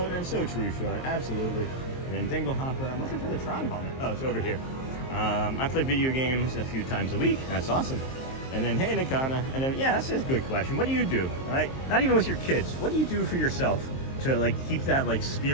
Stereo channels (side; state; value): right; late; 23 ms